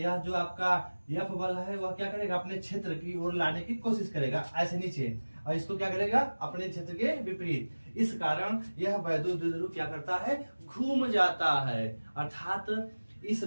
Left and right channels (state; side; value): inverted; both; correlation -1.00